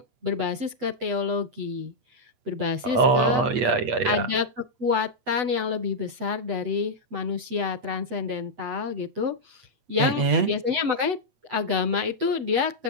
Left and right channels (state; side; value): late; left; 8.0 ms